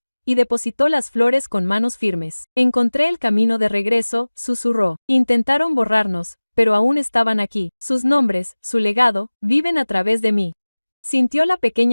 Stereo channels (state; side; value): inverted; both; correlation -1.00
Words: y depositó las flores con manos firmes. Encontré el camino de regreso, susurró. Intentaron borrarnos, pero aún estaban aquí. Sus nombres, su legado, viven a través de mí. Sintió la